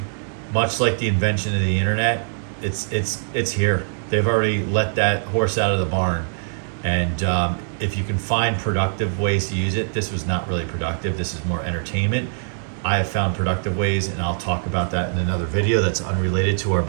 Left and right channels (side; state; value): left; silent; digital silence